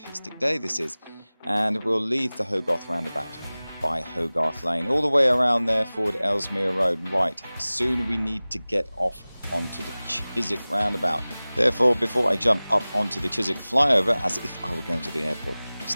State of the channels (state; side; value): inverted; both; correlation -0.99